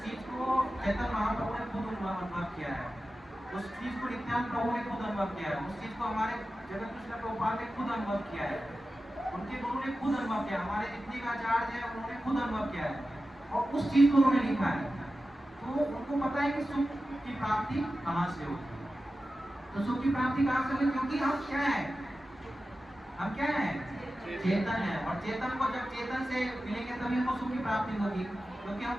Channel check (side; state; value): both; normal; correlation 0.93